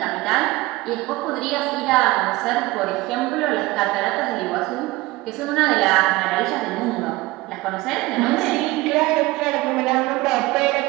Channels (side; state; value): left; quieter; 20.3 dB